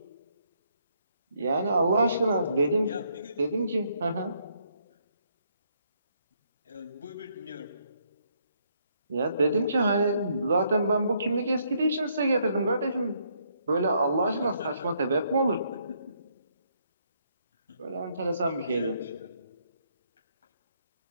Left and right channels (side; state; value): both; inverted; correlation -0.72